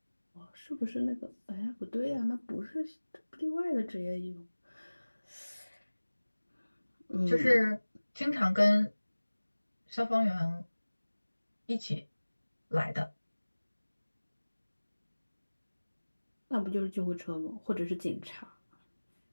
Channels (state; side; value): inverted; both; correlation -1.00